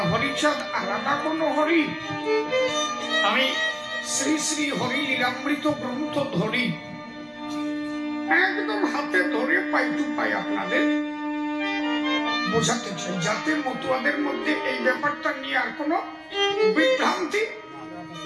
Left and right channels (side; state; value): both; identical; correlation 1.00